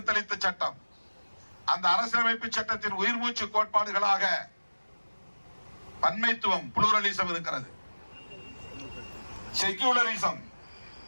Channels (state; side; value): inverted; both; correlation -1.00